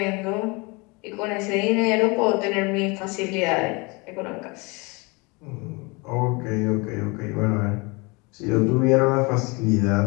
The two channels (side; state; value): right; quieter; 27.7 dB